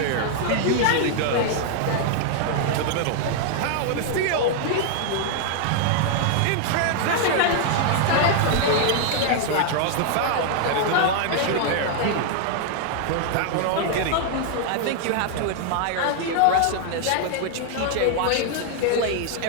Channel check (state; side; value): different; both; correlation 0.00